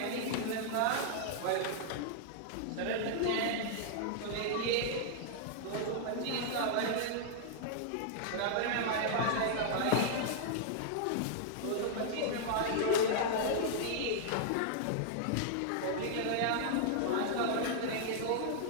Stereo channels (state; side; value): different; both; correlation -0.01